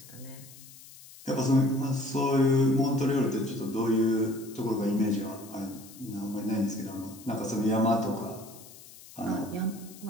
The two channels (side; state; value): left; noise; hiss, 19 dB below the sound